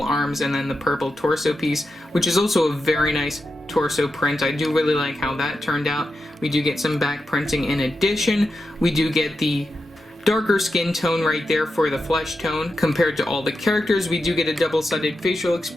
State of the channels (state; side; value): normal; both; correlation 0.88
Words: arms and then the purple torso piece, which is also a very nice torso print. I do really like how that turned out. We do get some back printing in addition. We do get the darker skin tone right there for the flesh tone compared to all the characters. We do get a double-sided facial